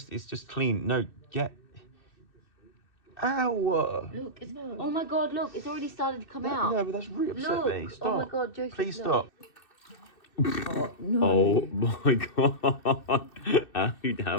It's just clean. No, get... Ow! Look, it's... Oh my god, look, it's already started to come out. No, but that's really upset me. Stop. Oh my god, Joseph, Please look. stop. Oh, no. Oh my god. How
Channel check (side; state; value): right; late; 2.6 ms